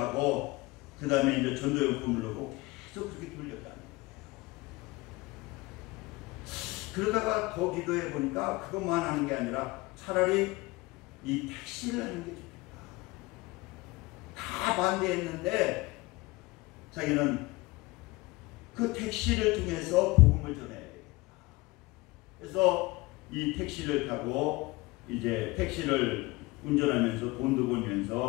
그 다음에 이제 전도용품을 넣고 계속 그렇게 돌렸다는 거예요. 그러다가 더 기도해 보니까 그것만 하는 게 아니라 차라리 이 택시를 하는 게 좋겠다. 다 반대했는데 자기는 그 택시를 통해서 복음을 전해야 되겠다. 그래서 이 택시를 타고 이제 택시를 운전하면서 돈도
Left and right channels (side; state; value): right; quieter; 22.2 dB